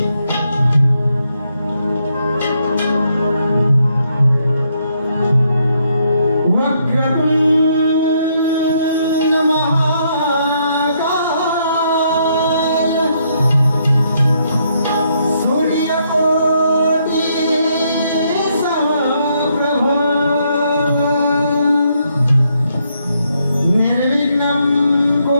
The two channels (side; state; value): both; inverted; correlation -0.74